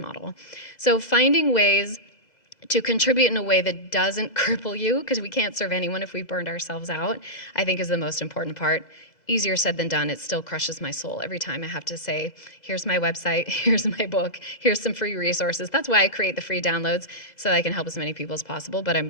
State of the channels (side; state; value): right; late; 2.5 ms